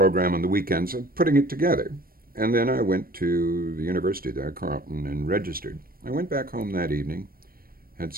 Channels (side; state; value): left; late; 0.43 ms